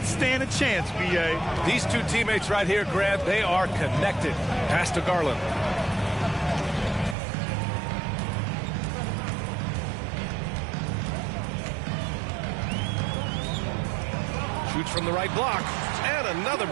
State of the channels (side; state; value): left; drops out; at 7.2 s